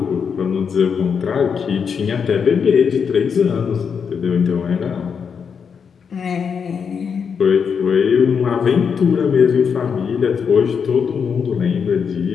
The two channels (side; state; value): right; quieter; 6.5 dB